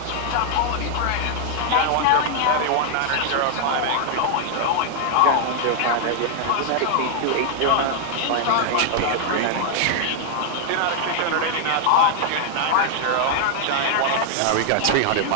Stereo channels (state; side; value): different; both; correlation 0.00